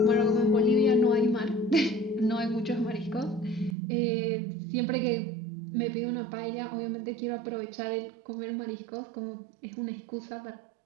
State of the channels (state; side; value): drops out; left; at 3.8 s